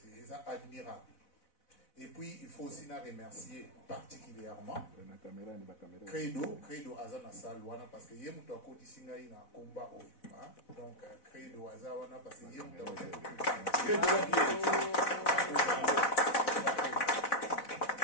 admirable. Et puis il faut aussi remercier particulièrement Credo aza na salle wana parce que ye mutu akotisi ngai na combat oyo donc Credo aza wana parce que ye mutu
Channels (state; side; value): late; right; 4.0 ms